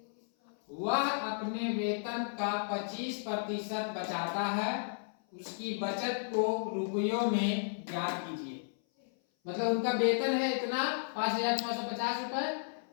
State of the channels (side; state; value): right; silent; 55 dB below the other